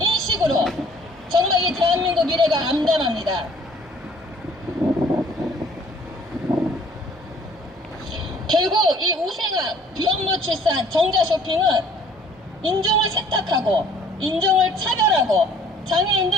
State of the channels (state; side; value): normal; both; correlation 0.56